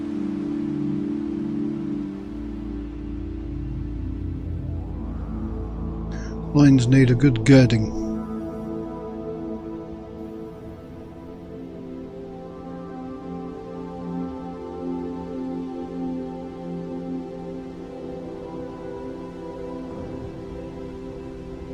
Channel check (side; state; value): both; identical; correlation 1.00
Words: Loins need a good girding.